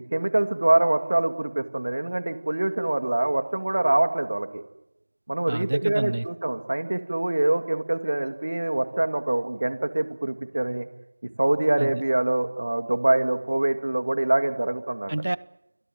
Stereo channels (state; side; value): inverted; both; correlation -1.00